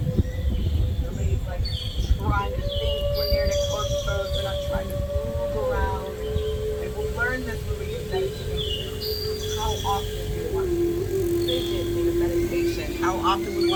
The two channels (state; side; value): identical; both; correlation 1.00